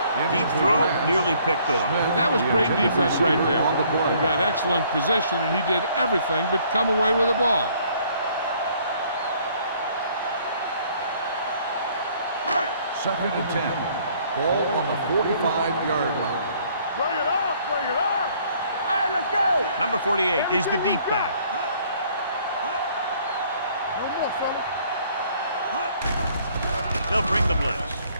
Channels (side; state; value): both; inverted; correlation -0.61